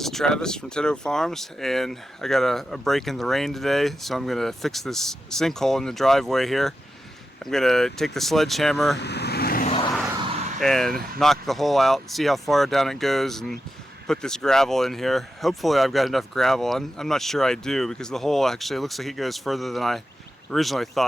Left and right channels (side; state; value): both; normal; correlation 0.89